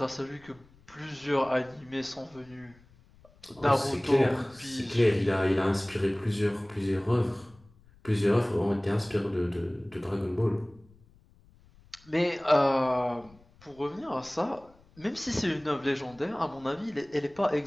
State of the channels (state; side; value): noise; left; rumble, 27 dB below the sound